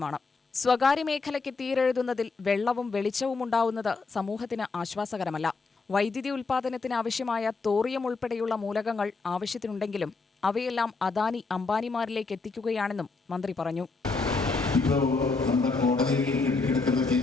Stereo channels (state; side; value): quieter; right; 4.1 dB